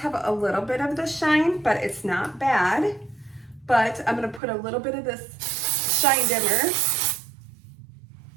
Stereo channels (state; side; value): drops out; left; at 4.4 s